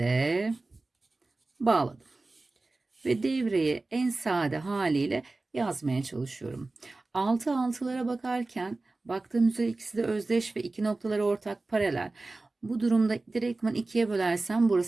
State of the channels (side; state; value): left; quieter; 3.2 dB